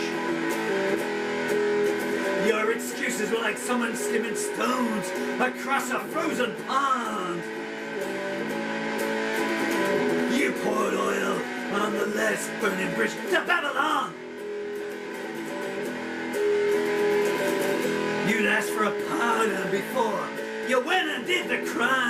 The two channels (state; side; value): identical; both; correlation 1.00